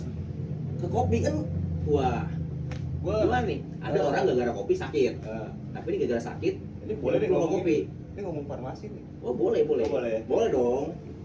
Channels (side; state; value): both; identical; correlation 1.00